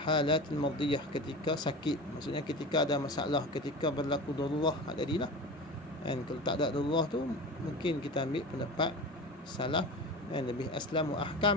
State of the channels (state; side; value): normal; both; correlation 0.31